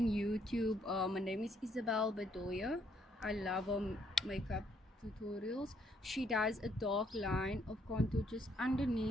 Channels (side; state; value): both; normal; correlation 0.70